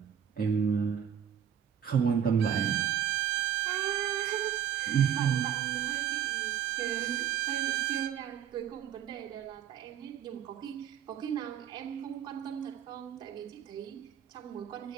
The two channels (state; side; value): quieter; left; 9.1 dB